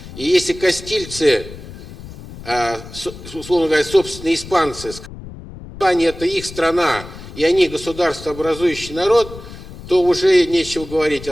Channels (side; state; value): left; noise; rumble, 14 dB below the sound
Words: И если кастильцы, условно говоря, собственные испанцы, Испания это их страна, и они государствообразующий народ, то уже нечего говорить